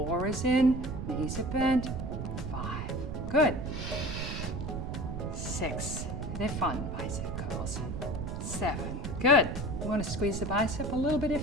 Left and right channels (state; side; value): noise; right; rumble, 4 dB below the sound